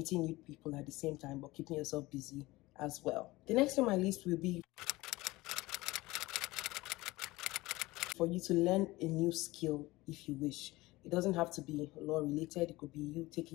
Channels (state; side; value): quieter; right; 20.0 dB